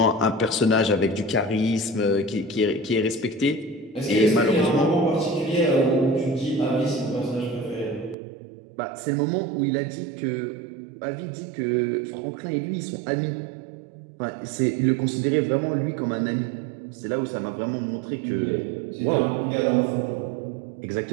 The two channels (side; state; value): left; drops out; at 8.2 s